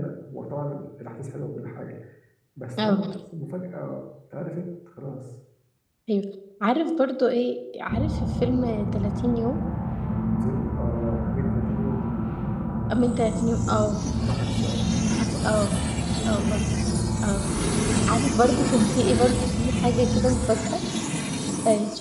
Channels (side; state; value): both; identical; correlation 1.00